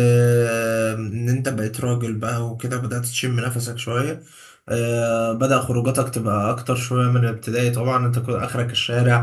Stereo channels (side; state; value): both; identical; correlation 1.00